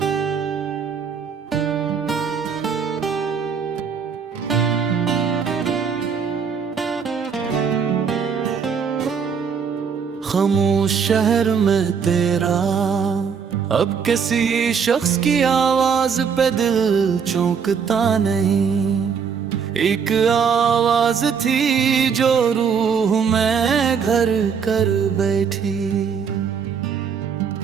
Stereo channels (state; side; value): quieter; left; 6.5 dB